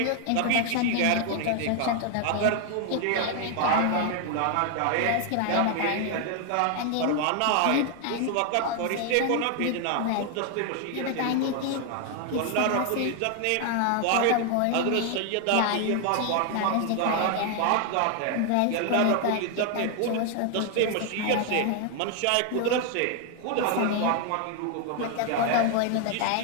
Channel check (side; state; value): both; different; correlation 0.00